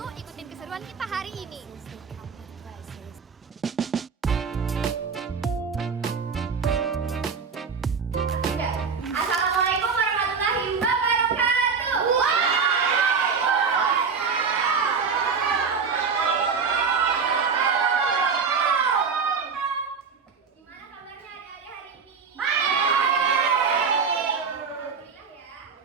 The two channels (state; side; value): quieter; left; 5.6 dB